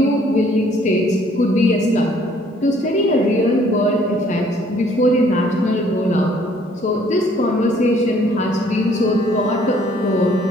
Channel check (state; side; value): normal; both; correlation 0.61